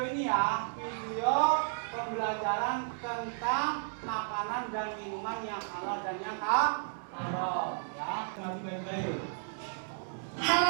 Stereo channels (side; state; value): left; silent; 56 dB below the other